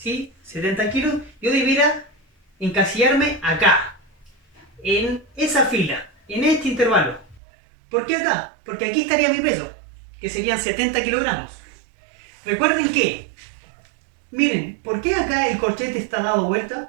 70 kilos, yo debiera encasillarme acá, en esa fila, en este intervalo. ¿Por qué acá? Porque aquí estaría mi peso, que serían 70 kilogramos. Recuerden que, miren, ¿por qué acá el corchete está dado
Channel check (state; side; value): drops out; left; at 7.4 s